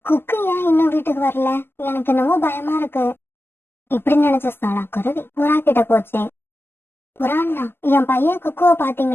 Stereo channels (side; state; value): right; late; 0.11 ms